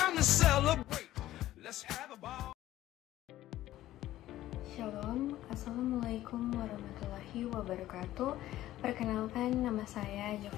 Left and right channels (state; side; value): quieter; right; 14.4 dB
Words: to celebrate. Let's have a ball. Shalom, Assalamualaikum warahmatullahi wabarakatuh. Perkenalkan, nama saya